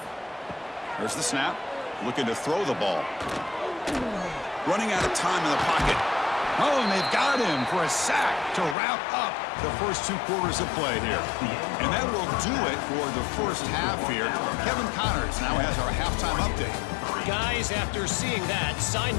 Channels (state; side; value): drops out; right; at 8.8 s